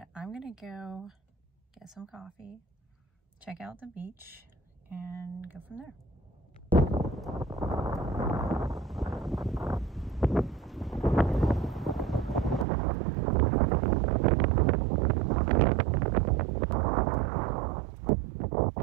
I'm gonna go get some coffee, check out the beach, and go from there.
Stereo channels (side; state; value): left; drops out; at 12.7 s